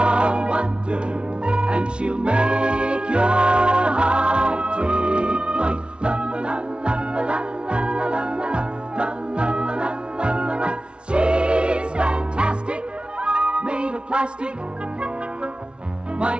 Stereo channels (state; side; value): late; left; 0.057 ms